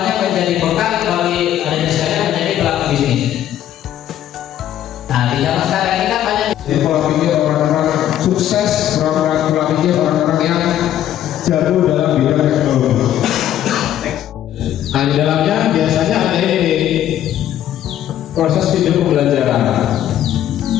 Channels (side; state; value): right; quieter; 11.5 dB